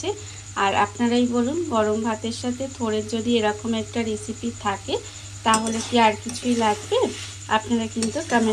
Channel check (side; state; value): both; identical; correlation 1.00